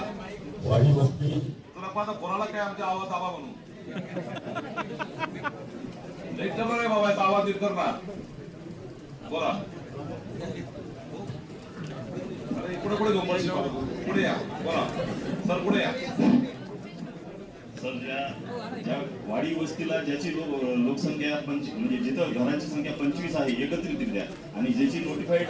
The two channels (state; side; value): identical; both; correlation 1.00